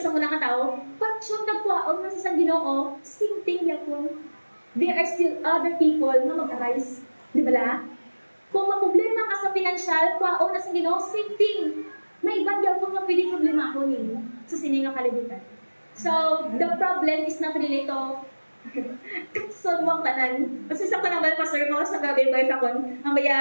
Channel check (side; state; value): both; inverted; correlation -1.00